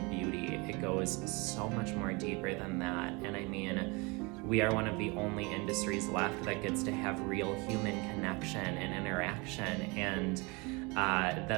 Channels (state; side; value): quieter; left; 27.6 dB